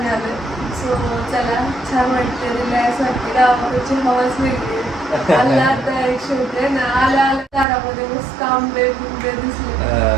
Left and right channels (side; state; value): left; drops out; at 7.7 s